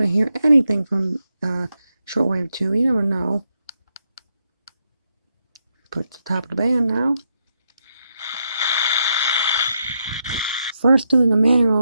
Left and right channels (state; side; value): inverted; both; correlation -0.81